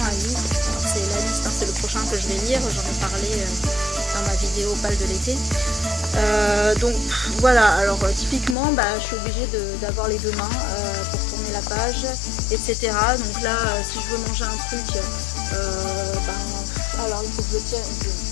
un livre, alors c'est la liste, hein, c'est le prochain que je vais lire, j'en ai parlé dans ma vidéo Pâle de l'été. Donc voilà, alors typiquement je suis obligée d'avoir les deux mains pour tourner la page, etc. Donc là, si je veux manger un truc, alors il faut que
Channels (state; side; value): drops out; right; at 8.6 s